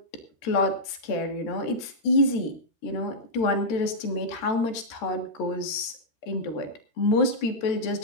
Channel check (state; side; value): late; right; 13 ms